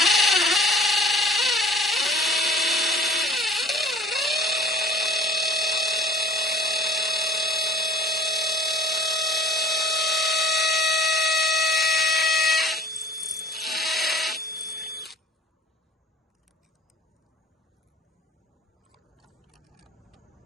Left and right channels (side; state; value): both; normal; correlation 0.50